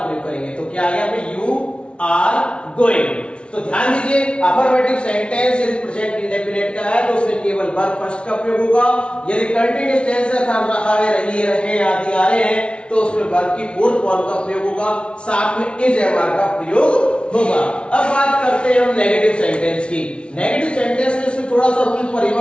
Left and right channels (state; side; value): late; right; 0.058 ms